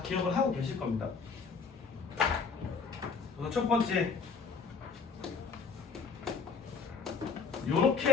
기억을 하고 계실 겁니다. 그래서 첫 번째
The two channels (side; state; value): right; quieter; 5.2 dB